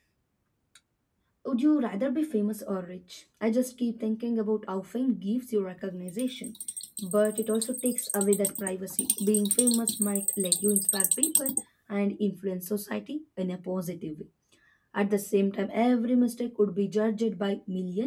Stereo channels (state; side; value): identical; both; correlation 1.00